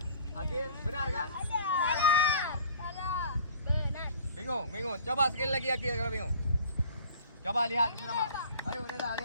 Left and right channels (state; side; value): inverted; both; correlation -0.50